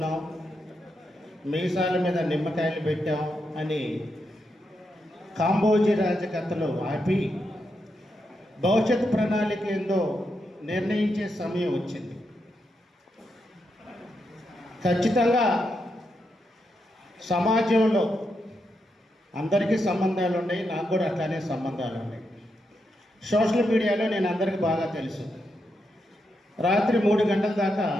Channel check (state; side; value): normal; both; correlation 0.84